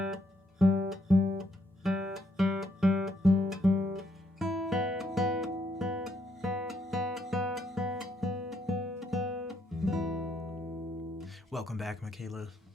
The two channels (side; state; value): both; normal; correlation 0.73